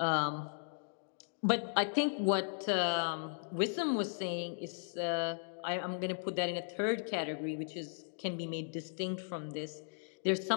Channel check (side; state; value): right; silent; digital silence